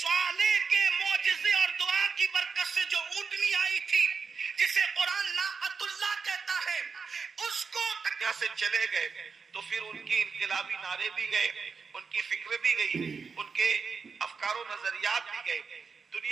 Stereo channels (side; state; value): left; quieter; 5.3 dB